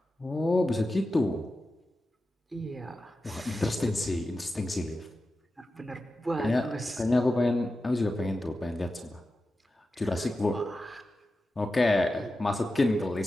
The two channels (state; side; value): normal; both; correlation 0.92